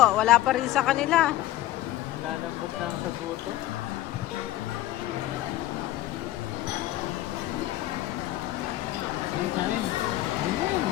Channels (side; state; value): right; quieter; 14.9 dB